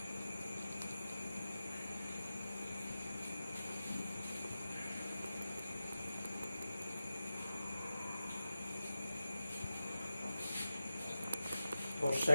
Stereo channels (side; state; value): both; inverted; correlation -0.93